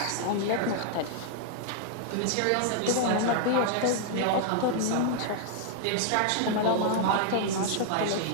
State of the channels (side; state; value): both; different; correlation 0.00